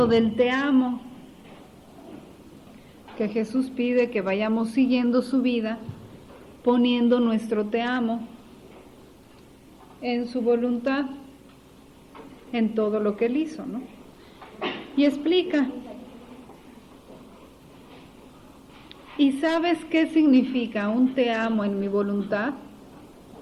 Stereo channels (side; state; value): both; identical; correlation 1.00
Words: del te amo, que Jesús pide que vayamos siguiendo su vida, poniendo nuestro te amo en su voluntad, en todo lo que él hizo, ¿no? Y explica. ¿Y sabes qué significa un te amo en mi voluntad?